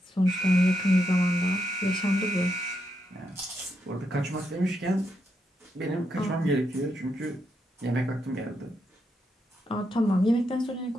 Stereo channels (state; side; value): normal; both; correlation 0.81